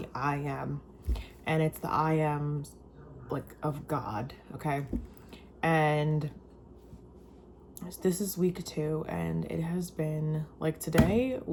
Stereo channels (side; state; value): both; identical; correlation 1.00